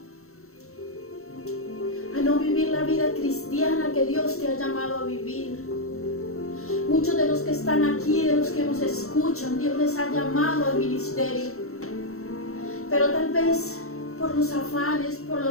a no vivir la vida cristiana que Dios te ha llamado a vivir. Muchos de los que están aquí, de los que nos escuchan, Dios les ha llamado al ministerio. Pero tal vez por los afanes, por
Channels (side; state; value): right; late; 0.63 ms